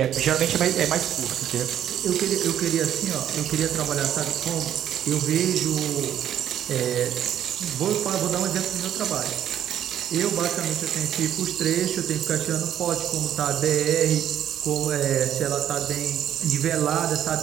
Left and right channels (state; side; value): quieter; left; 10.5 dB